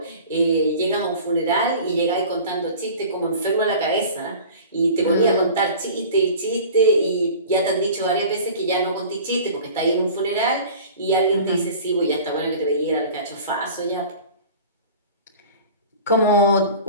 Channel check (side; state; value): both; inverted; correlation -0.40